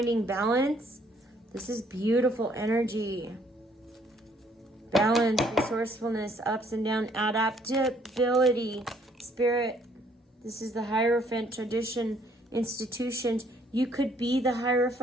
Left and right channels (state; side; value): normal; both; correlation 0.65